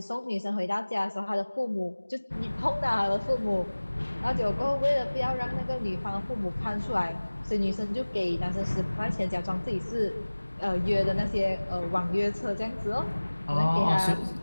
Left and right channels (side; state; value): both; inverted; correlation -1.00